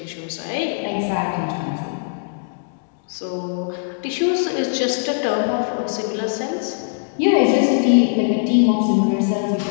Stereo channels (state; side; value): silent; right; digital silence